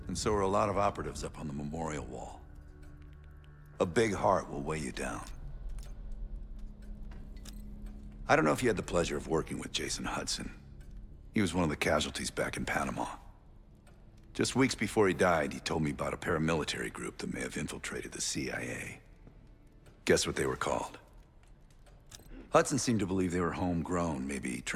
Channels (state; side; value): identical; both; correlation 1.00